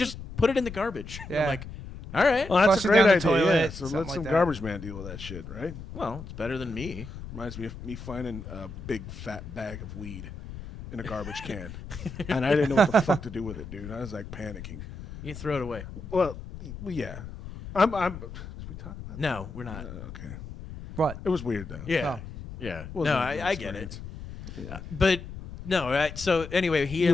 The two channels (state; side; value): noise; left; rumble, 11 dB below the sound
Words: put it in the garbage. And I'm Yeah. like, all right. Well, that's Flush a it great down the idea. toilet, Yeah. So something let like some that. garbage man deal with that shit, right? Well, it's better than me. Reminds me of me finding a big fat bag of weed in a garbage can, and I didn't know what the fuck to do with it, dude. I was like panicking. You throw it away. Well, yeah. I'm. Should we talk about No, we're not. that? Okay. What? It was weird though. Yeah, Oh. yeah. Wasn't No, a good I get it. experience. Yeah. But no, right? So anyway, he You